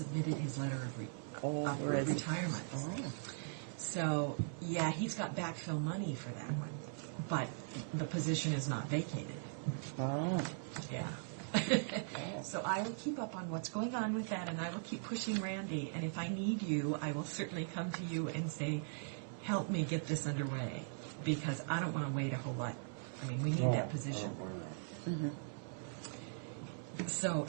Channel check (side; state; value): left; silent; 51 dB below the other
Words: his letter of really? retirement. Oh. So, yeah, he's got backfill money for that one. But the position is not vacated. Oh. Yeah. So I will keep up on what's going on with that, and I will keep pushing Randy. And if I need you, I will certainly come to you and say, help me get this underway. Because I don't want to wait a whole lot. I mean, we need that position. So,